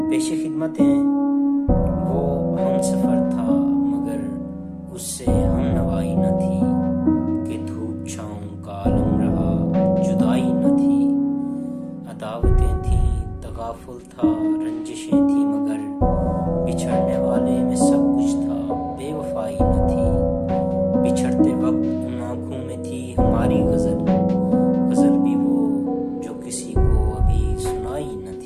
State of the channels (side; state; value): both; identical; correlation 1.00